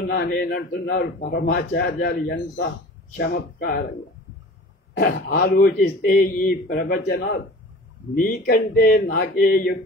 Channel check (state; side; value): normal; both; correlation 0.41